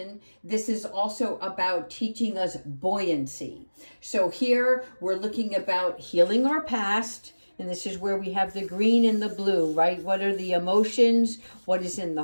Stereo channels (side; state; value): both; inverted; correlation -1.00